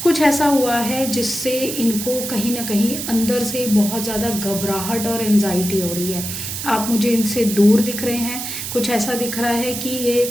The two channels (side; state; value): right; noise; hiss, 6 dB below the sound